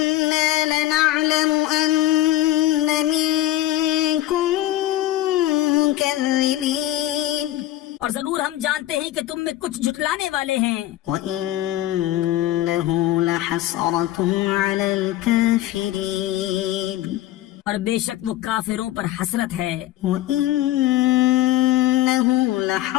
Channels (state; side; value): quieter; right; 14.8 dB